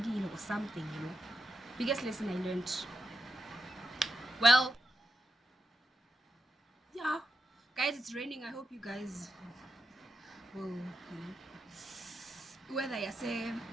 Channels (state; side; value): normal; both; correlation 0.85